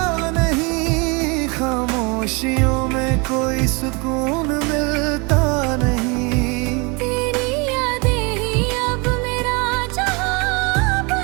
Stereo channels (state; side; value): quieter; left; 29.4 dB